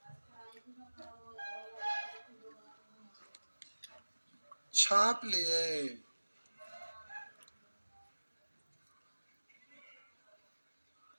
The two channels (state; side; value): inverted; both; correlation -1.00